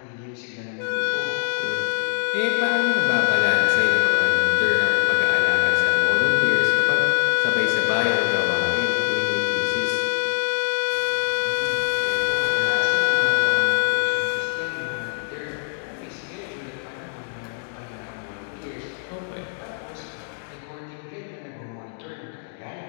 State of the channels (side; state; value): right; silent; digital silence